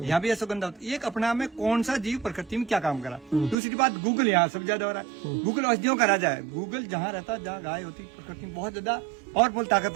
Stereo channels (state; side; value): drops out; left; at 3.6 s